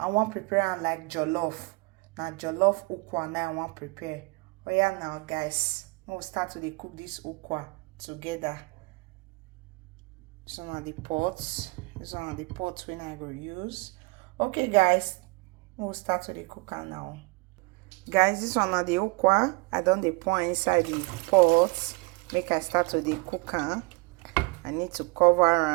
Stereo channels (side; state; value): left; quieter; 28.2 dB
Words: want prepare like jollof. Now jollof ukwa now I want prepare. Oh yeah, now guys, we'll start to cook this ukwa together. This one are the pots. This one are the pots when I go use. Okay guys, we'll start to cook now. Guys, this one are the ukwa. I done the pour inside the pot. Make I start to cook. I need to cover